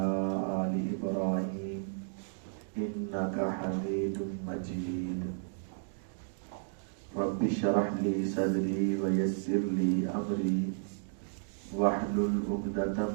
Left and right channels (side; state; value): left; silent; digital silence